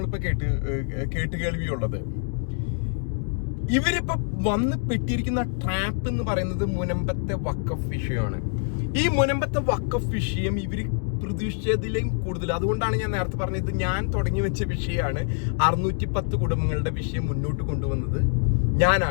കേട്ടുകേൾവിയുള്ളത്. ഇവരിപ്പോ വന്ന് പെട്ടിരിക്കുന്ന ട്രാപ്പ് എന്ന് പറയുന്നത് മുനമ്പത്തെ വഖഫ് വിഷയമാണ്. ഈ മുനമ്പത്തെ വഖഫ് വിഷയം ഇവര് പ്രതീക്ഷിച്ചതിലും കൂടുതൽ, അതുകൊണ്ടാണ് ഞാൻ നേരത്തെ പറഞ്ഞത്, ഞാൻ തുടങ്ങി വെച്ച വിഷയമാണ്. 610 കുടുംബങ്ങളുടെ വിഷയം മുന്നോട്ട് കൊണ്ടുവന്നത്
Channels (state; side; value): silent; right; 60 dB below the other